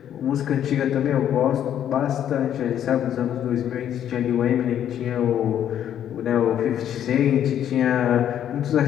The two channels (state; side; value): quieter; right; 10.2 dB